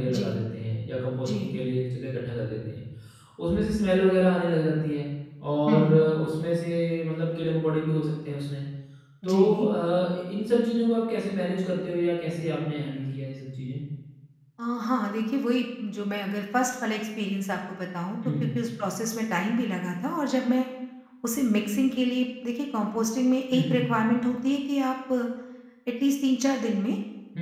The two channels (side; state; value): both; identical; correlation 1.00